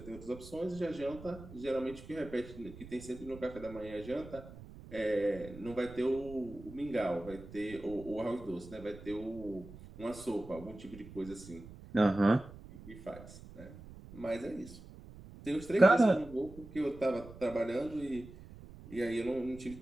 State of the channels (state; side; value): noise; right; rumble, 16 dB below the sound